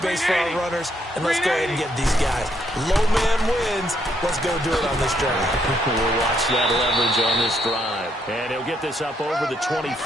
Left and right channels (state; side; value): normal; both; correlation 0.73